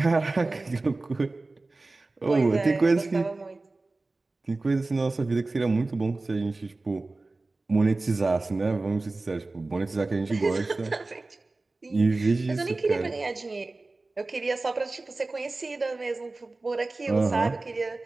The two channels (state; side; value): quieter; left; 3.3 dB